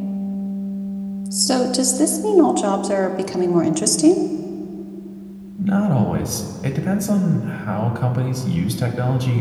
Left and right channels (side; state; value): both; identical; correlation 1.00